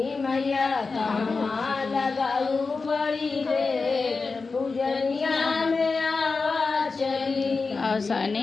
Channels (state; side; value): quieter; right; 4.3 dB